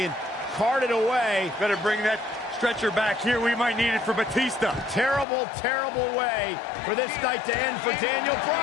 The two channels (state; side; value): drops out; right; at 5.2 s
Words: carted away. Better bring that stretcher back here. We might need it for Batista. Terrible, terrible way for this night to end for Daniel